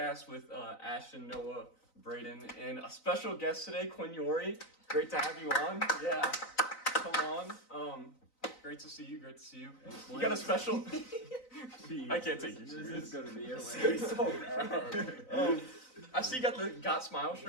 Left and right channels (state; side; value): late; right; 3.9 ms